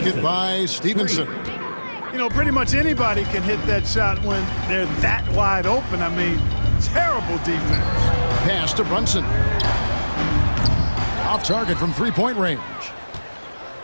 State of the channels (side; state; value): both; inverted; correlation -1.00